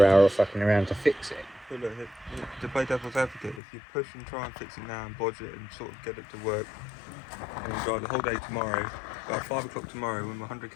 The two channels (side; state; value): right; drops out; at 3.6 s